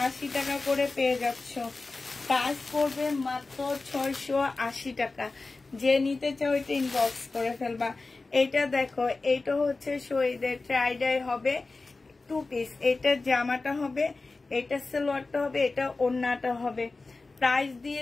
টাকা করে পেয়ে যাচ্ছ। প্রাইস পড়বে মাত্র 680 টাকা। যে নিতে চাও এটা ইনবক্স করে ফেলবা। এইটা দেখো, এইটা হচ্ছে শহীদের টাইডাই হবে 2 পিস। এটা জামাটা হবে, এটা সালোয়ারটা হবে, এটা ওড়নাটা হবে। প্রাইস দিয়ে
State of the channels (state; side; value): quieter; right; 3.6 dB